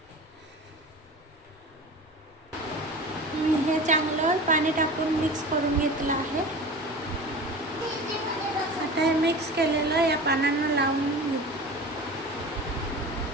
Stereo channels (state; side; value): normal; both; correlation 0.34